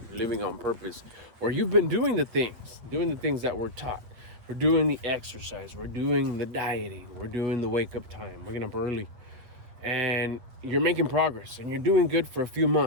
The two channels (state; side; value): late; left; 8.4 ms